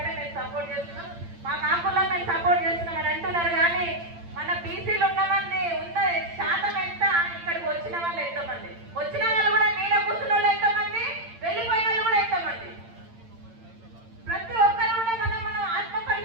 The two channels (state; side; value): late; left; 8.8 ms